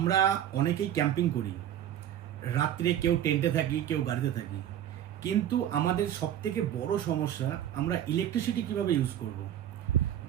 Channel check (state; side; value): quieter; left; 10.9 dB